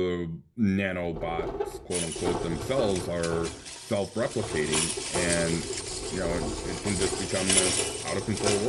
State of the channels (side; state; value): both; identical; correlation 1.00